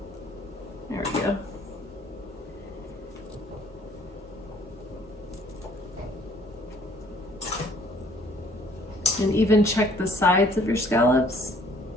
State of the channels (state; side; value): normal; both; correlation 0.59